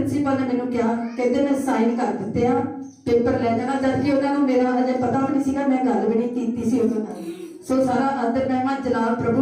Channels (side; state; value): both; identical; correlation 1.00